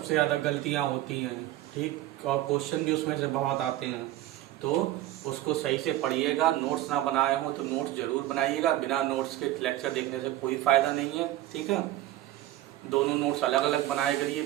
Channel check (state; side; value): quieter; left; 14.7 dB